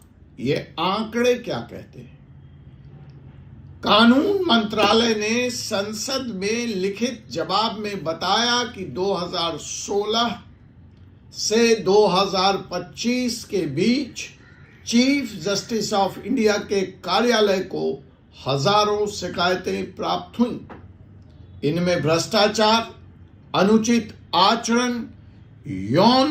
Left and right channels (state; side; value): identical; both; correlation 1.00